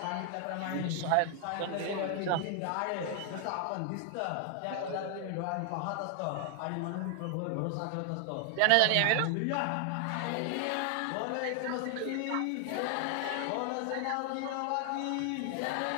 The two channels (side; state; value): both; different; correlation 0.00